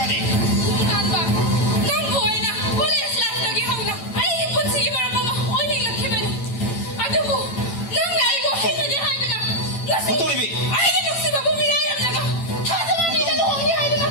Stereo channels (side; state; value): right; late; 8.9 ms